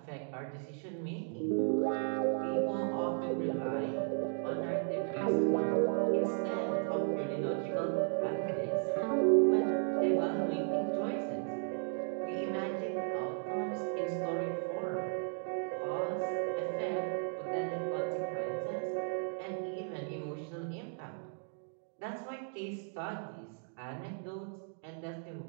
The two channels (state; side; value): silent; left; 54 dB below the other